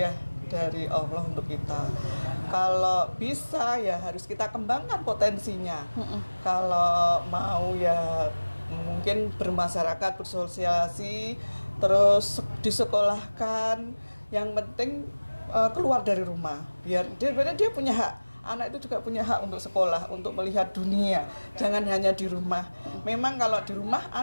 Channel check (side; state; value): both; inverted; correlation -1.00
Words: dari Allah untuk kita. Kalau bisa ya harus kita kembangkan potensinya. Kalau mau ya mungkin bermasyarakat, bersosialisasi, terus disekolahkan. Yang penting keluar dari rumah. Biar dia punya hak. Anak itu juga punya hak untuk sekolah, untuk melihat dunia. Jangan hanya di rumah. Memang kalau di rumah